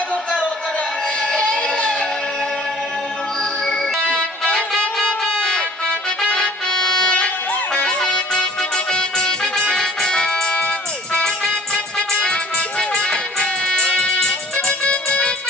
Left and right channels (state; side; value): normal; both; correlation 0.51